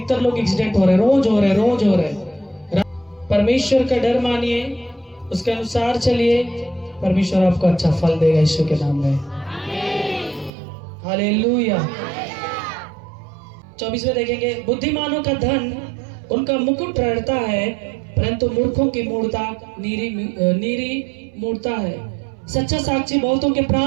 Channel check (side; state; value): left; drops out; at 10.5 s